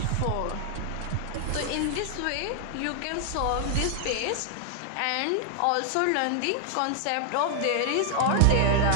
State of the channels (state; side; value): different; both; correlation 0.00